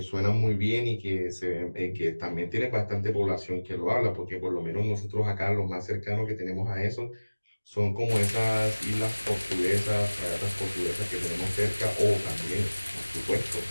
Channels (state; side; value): inverted; both; correlation -1.00